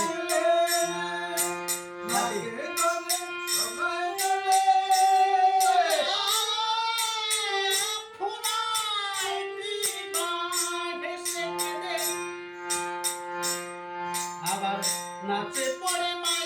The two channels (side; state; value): both; identical; correlation 1.00